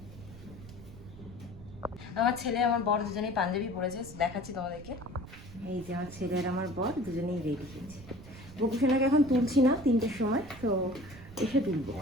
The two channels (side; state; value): right; noise; rumble, 16 dB below the sound